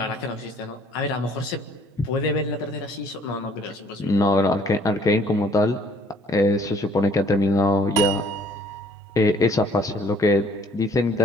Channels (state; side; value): normal; both; correlation 0.59